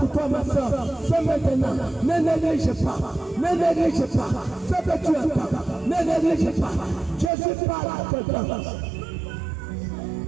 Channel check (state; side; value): drops out; left; at 7.3 s